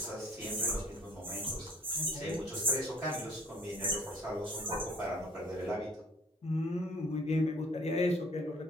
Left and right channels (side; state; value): both; normal; correlation 0.54